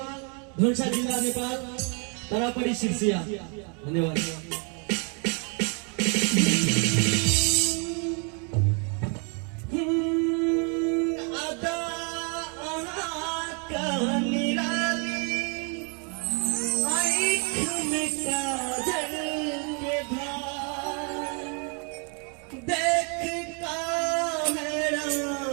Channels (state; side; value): quieter; left; 37.3 dB